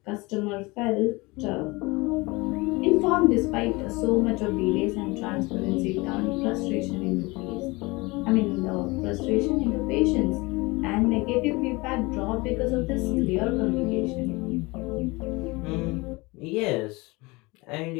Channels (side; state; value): right; quieter; 24.0 dB